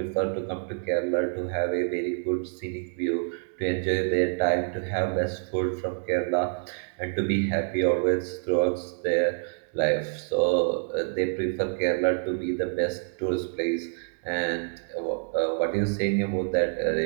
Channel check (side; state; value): left; silent; digital silence